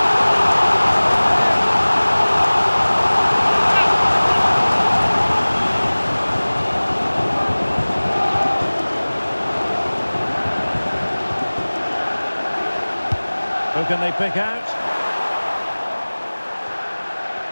Who can they pick out?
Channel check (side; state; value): both; inverted; correlation -1.00